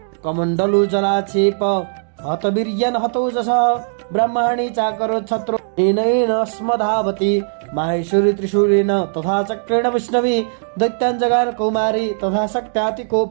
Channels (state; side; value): silent; left; digital silence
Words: कमण्डलु जलाक्षेप हतवीर्यन् हतोजसः ब्रह्माणि चाकरो छत्रो येन स्मधावति। माहेश्वरी त्रिशूलेन तथा चक्रेण वैष्णवी दैत्यान् जगार कौमारी तथा